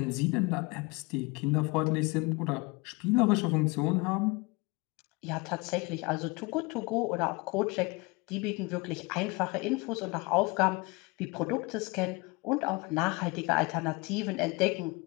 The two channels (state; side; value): quieter; right; 26.4 dB